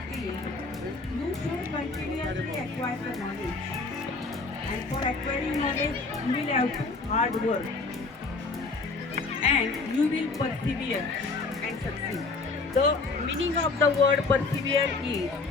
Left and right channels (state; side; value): quieter; right; 3.9 dB